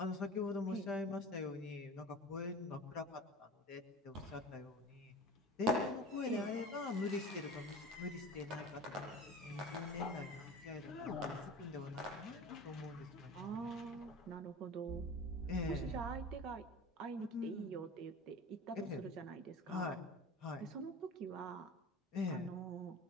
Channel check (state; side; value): normal; both; correlation 0.36